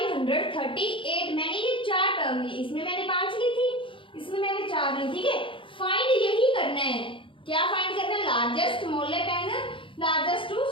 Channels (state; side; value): late; right; 0.25 ms